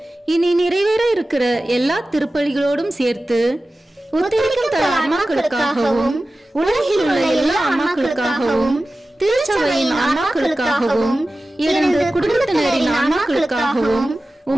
இனி நிறைவேற இருக்கிற எல்லா திருப்பலிகளோடும் சேர்த்து உத்தரிக்கும் தல ஆன்மாக்களுக்காகவும் உலகில் உள்ள எல்லா ஆன்மாக்களுக்காகவும் திருச்சபையின் ஆன்மாக்களுக்காகவும் எனது குடும்பத்தினரின் ஆன்மாக்களுக்காகவும்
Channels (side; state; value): both; normal; correlation 0.95